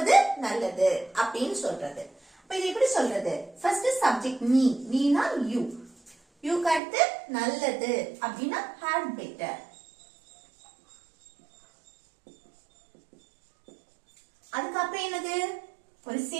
நல்லது அப்படின்னு சொல்றது. இது எப்படி சொல்றது, ஃபர்ஸ்ட் சப்ஜெக்ட் நீ, நீனா யூ, யூக்கு அடுத்து நல்லது அப்படின்னா had better. அதுக்கப்புறம் என்னது ஒரு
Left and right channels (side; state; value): left; drops out; at 6.8 s